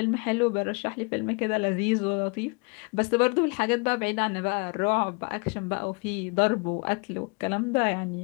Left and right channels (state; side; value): quieter; right; 31.8 dB